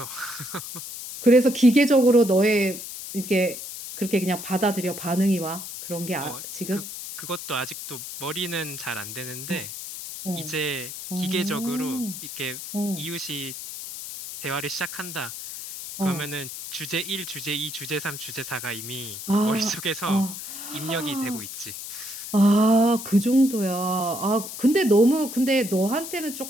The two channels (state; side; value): noise; left; hiss, 9 dB below the sound